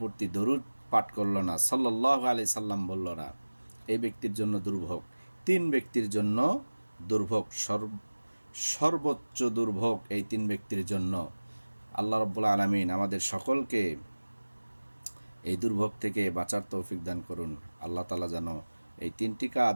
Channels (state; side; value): inverted; both; correlation -1.00